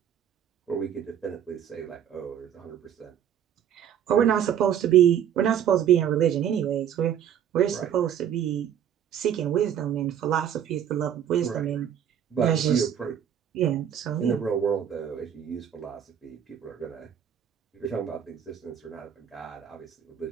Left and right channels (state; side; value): quieter; left; 9.4 dB